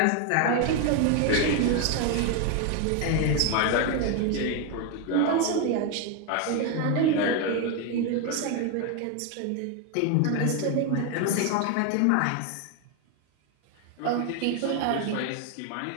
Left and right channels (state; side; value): different; both; correlation 0.01